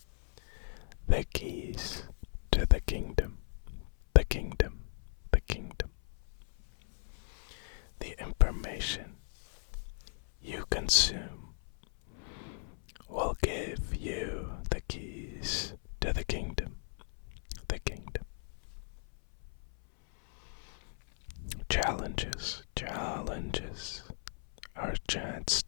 the keys to the kingdom, the kingdom, the kingdom. The information you consume will give you the keys to the kingdom, the kingdom. Challenges, challenges are a chance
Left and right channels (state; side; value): silent; right; 54 dB below the other